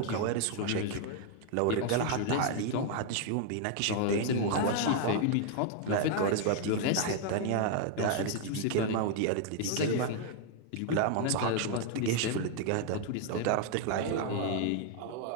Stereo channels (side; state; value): both; different; correlation 0.00